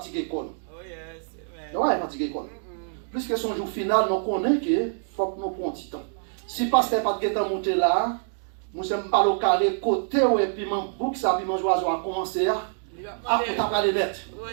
l'école. Oh yes, amen. Non, ouais, fatiguer l'école. Puisque son jour final, nous connaissons qu'il faut que nous prenions du temps. Si parce qu'elle n'a pas de temps monter là, nous sommes pas au carré côté et puis mon bouc, ça, puis mon oiseau a commencé à. Ah, on t'a pas les lettres. Oui,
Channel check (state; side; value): silent; left; digital silence